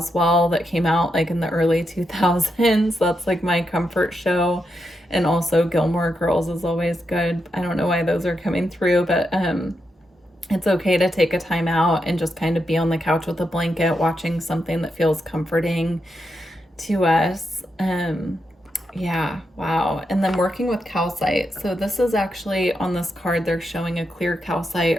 that came out like in the early 2000s. That's like my comfort show. And also Gilmore Girls is always good. I don't know why those are coming through, but it's okay to take a time out and just kind of be on the couch with a blanket watching something that feels comforting to us. Yeah, wow. And then working with calcite. So this is actually on this card, they're showing a clear calcite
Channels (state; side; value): normal; both; correlation 0.84